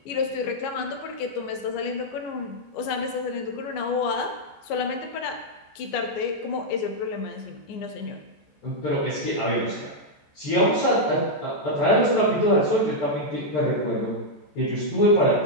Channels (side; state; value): right; late; 14 ms